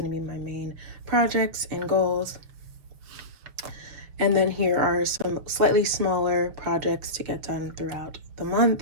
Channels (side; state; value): left; late; 6.7 ms